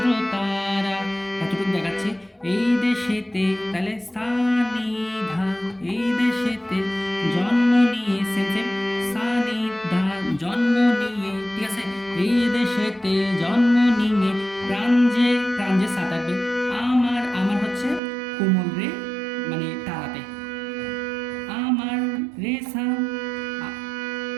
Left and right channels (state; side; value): drops out; left; at 18.0 s